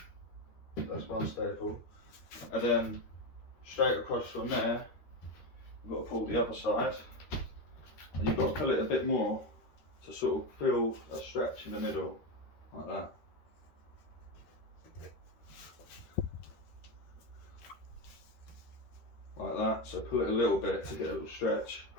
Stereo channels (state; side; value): late; right; 13 ms